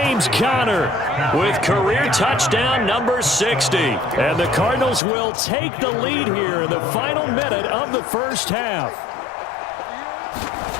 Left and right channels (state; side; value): drops out; right; at 5.0 s